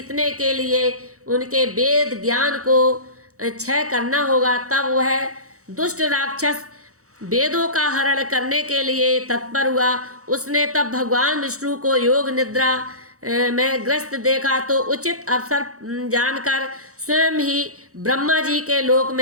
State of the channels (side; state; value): left; late; 0.65 ms